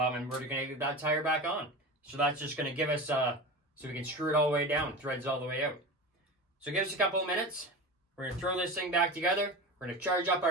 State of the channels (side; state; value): both; normal; correlation 0.28